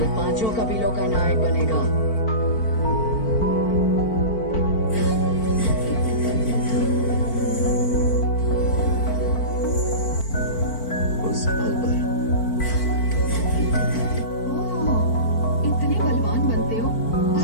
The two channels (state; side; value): late; right; 4.5 ms